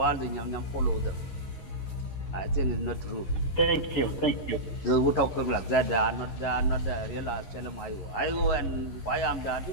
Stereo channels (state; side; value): late; right; 11 ms